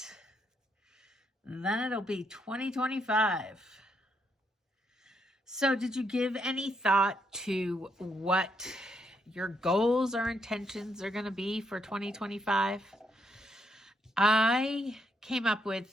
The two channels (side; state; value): both; normal; correlation 0.76